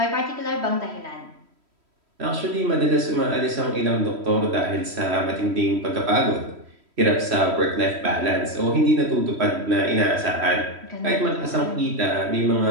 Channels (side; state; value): left; late; 3.1 ms